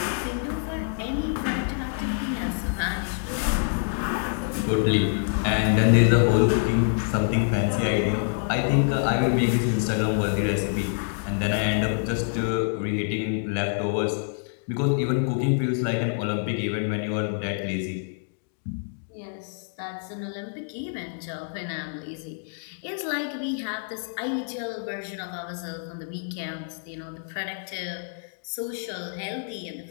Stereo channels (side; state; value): right; silent; digital silence